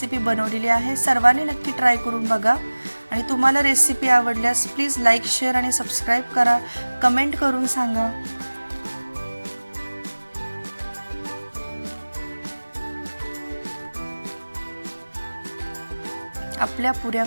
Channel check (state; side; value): inverted; both; correlation -1.00